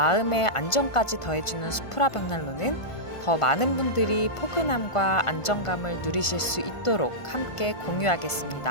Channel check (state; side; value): late; right; 1.5 ms